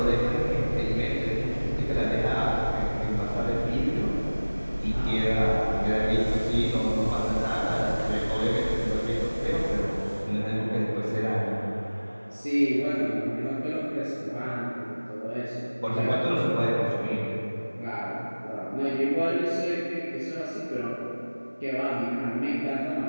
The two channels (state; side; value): inverted; both; correlation -1.00